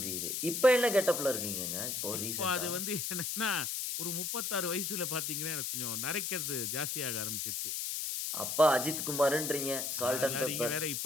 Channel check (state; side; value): noise; left; hiss, 2 dB below the sound